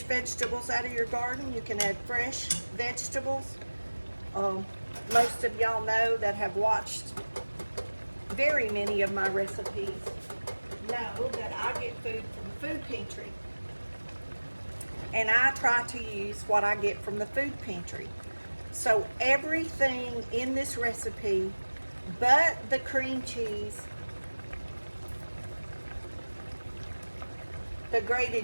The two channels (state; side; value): inverted; both; correlation -1.00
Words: vegetables out of your garden, you can add fresh vegetables. Most of y'all know that have watched very many of my recipes know that I get food from the food pantry. And I try to use what I get from the food pantry. So everything in this recipe but the cream cheese, the